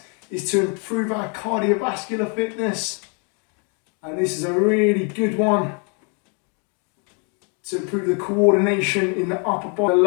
is to improve our cardiovascular fitness. And this is a really good one to improve the coordination in the upper body, the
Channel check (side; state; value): right; quieter; 37.2 dB